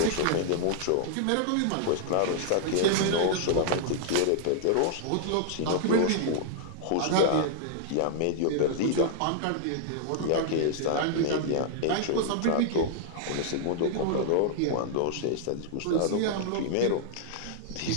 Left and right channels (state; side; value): different; both; correlation -0.01